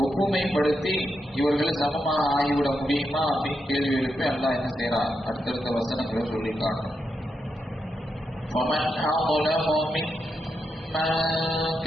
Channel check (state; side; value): normal; both; correlation 0.85